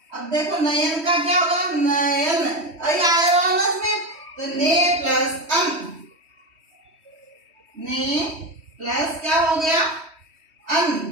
अब देखो नयन का क्या होगा? नयन ऐ आया ना इसमें, तो ने प्लस अन, ने प्लस क्या हो गया? अन,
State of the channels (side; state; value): left; late; 3.1 ms